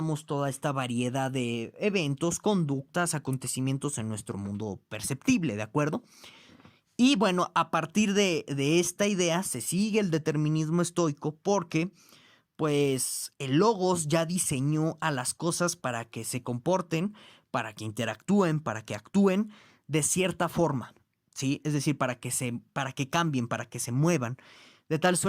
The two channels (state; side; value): identical; both; correlation 1.00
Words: toda esta variedad de eventos, conductas, acontecimientos en nuestro mundo perceptible, ¿de acuerdo? Y bueno, a partir de esta idea se sigue el determinismo estoico porque pues el Logos ya diseñó a las cosas para que se comporten, para que interactúen, para que actúen de cierta forma, ¿sí? Es decir, para que cambien, para que se muevan, de tal